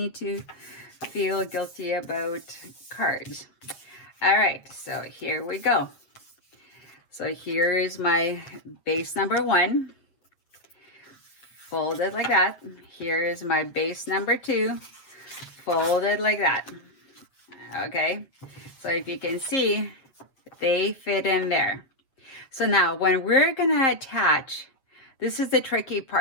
to feel guilty about cards. All right, so here we go. So here is my base number 1. Fold it like that. Here is my base number 2. Fold it like that. Okay, so if you can see, they fit in there. So now when we're gonna attach, this is the tricky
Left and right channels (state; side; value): late; right; 7.4 ms